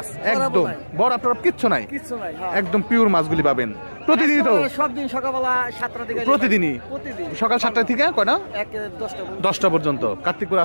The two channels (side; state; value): both; inverted; correlation -1.00